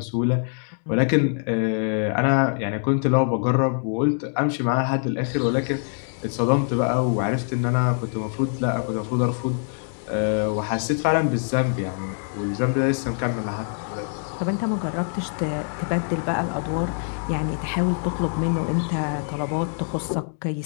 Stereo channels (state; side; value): silent; right; 62 dB below the other